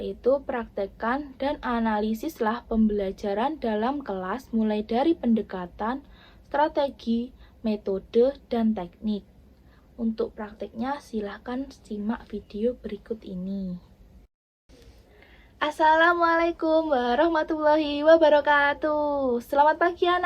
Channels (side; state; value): both; identical; correlation 1.00